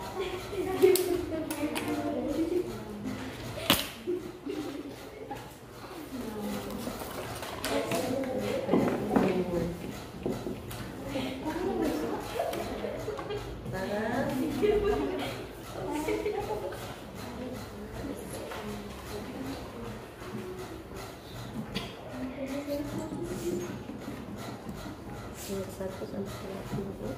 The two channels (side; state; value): both; identical; correlation 1.00